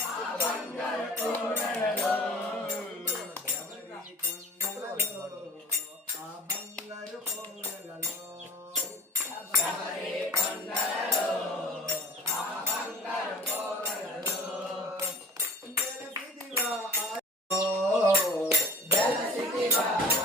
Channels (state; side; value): normal; both; correlation 0.41